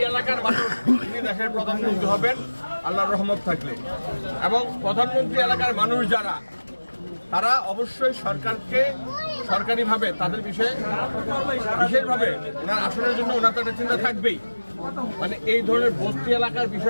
এলাকার মানুষ, উনি দেশের প্রধানমন্ত্রী হবেন আল্লাহর রহমত থাকলে। এবং প্রধানমন্ত্রী এলাকার মানুষ যারা, তারা অবশ্যই সরকারকে সরকারিভাবে তাদের বিষয়ে বিশেষভাবে ওনার আসনের জন্য ওনার তো একটা চিন্তা থাকবেই। মানে এই ধরনের বস্তি এলাকার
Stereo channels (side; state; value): both; inverted; correlation -1.00